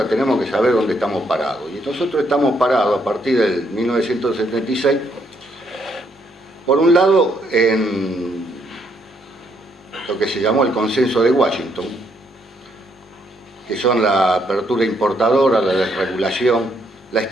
tenemos que saber dónde estamos parados. Y nosotros estamos parados a partir del 1976, por un lado, en lo que se llamó el Consenso de Washington, que son la apertura importadora, la desregulación, la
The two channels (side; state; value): both; normal; correlation 0.73